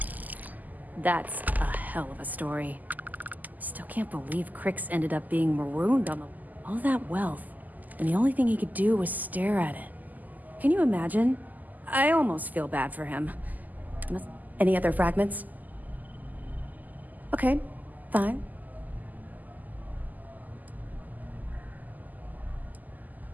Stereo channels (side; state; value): left; late; 0.082 ms